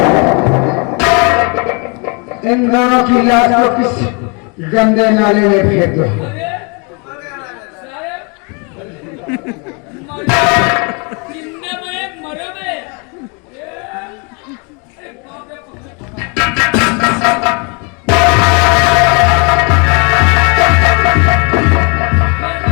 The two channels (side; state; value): right; quieter; 33.0 dB